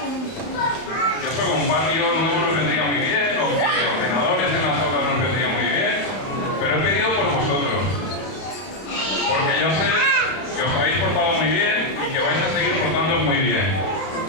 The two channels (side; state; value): right; late; 31 ms